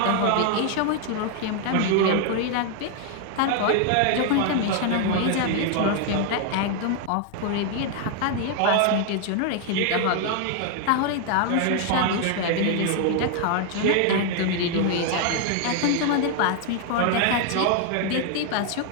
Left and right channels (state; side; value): different; both; correlation 0.00